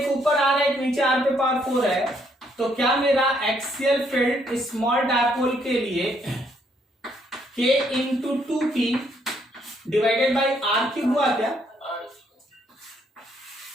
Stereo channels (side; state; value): both; normal; correlation 0.71